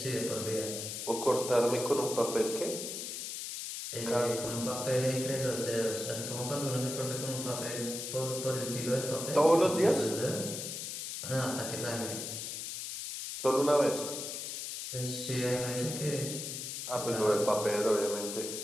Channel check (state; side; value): noise; left; hiss, 6 dB below the sound